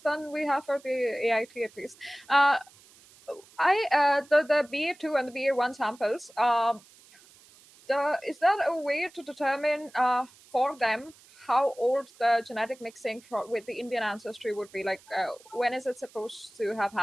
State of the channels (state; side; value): noise; right; hiss, 26 dB below the sound